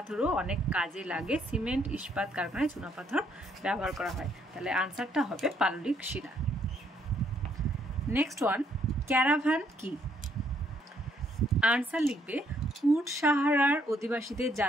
অনেক কাজে লাগে। সিমেন্ট ইস্পাত কারখানায় চুনা পাথর ব্যবহার করা হয়। তাহলে আনসারটা হবে পাললিক শিলা। নেক্সট ওয়ান, ক্যারাভান কি? আনসার লিখবে, উট সাহারার অধিবাসীদের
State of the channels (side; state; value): both; normal; correlation 0.70